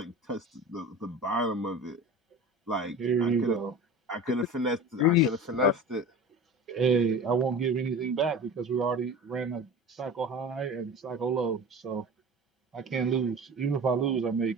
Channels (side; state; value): both; normal; correlation 0.35